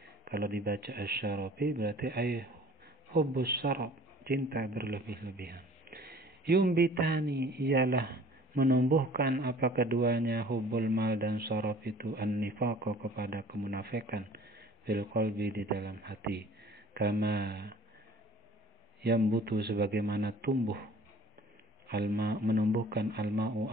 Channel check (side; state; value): both; normal; correlation 0.49